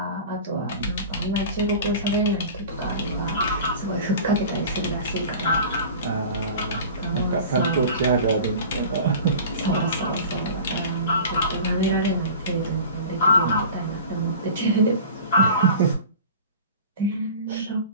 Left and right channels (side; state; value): both; inverted; correlation -0.38